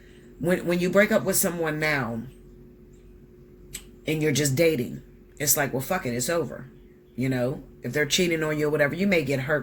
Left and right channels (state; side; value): identical; both; correlation 1.00